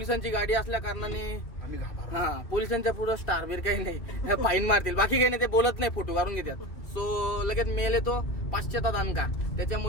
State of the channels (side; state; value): right; late; 2.1 ms